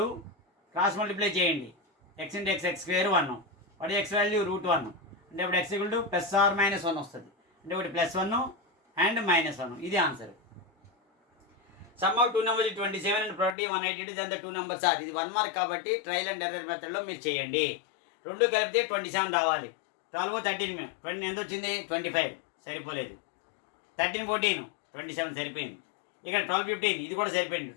క్రాస్ మల్టిప్లై చేయండి. x × x x² 1 వాటి x వాల్యూ √1 అంటే ఇప్పుడు x ఈక్వల్ టు +or -1 వస్తుంది. అంటే ఒకటి +1 అండ్ -1, ఇది answer. Sum of 2 numbers 27 and product 182 then the 2 numbers are. ఇది 1 మార్క్ కాబట్టి ట్రయల్ అండ్ ఎర్రర్ మెథడ్లో మీరు చేయండి. 2 కలిపితే 27 రావాలి. 12 13 20 ఎంత వచ్చింది 25, సరిపోలేదు. 13 14 27 సరిపోయింది. ఇక్కడ 12 15 ఇది కూడా సరిపోయింది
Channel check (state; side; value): drops out; right; at 13.6 s